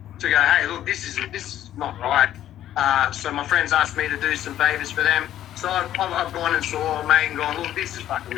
to go, hey, look, this is not right. So my friends asked me to do some favours for them. So I've gone and saw a mate and gone, look, this is fucking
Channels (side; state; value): right; quieter; 12.0 dB